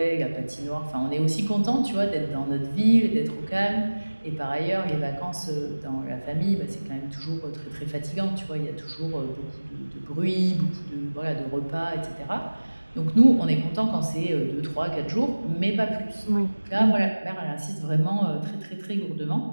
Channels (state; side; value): inverted; both; correlation -1.00